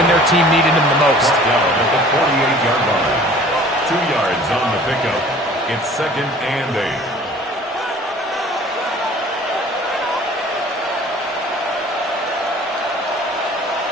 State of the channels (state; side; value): normal; both; correlation 0.49